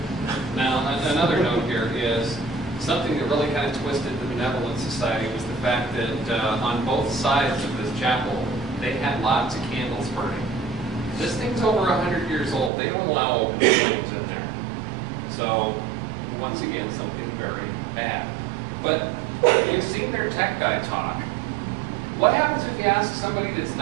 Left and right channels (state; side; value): drops out; left; at 12.7 s